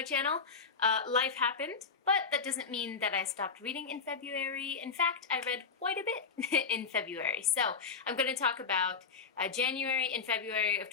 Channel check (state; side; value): quieter; right; 5.3 dB